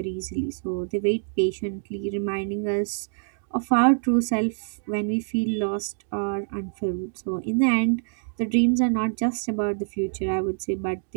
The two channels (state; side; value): silent; left; digital silence